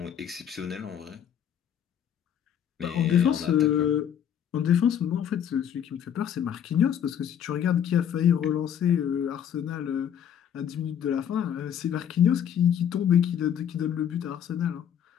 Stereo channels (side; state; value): right; quieter; 9.1 dB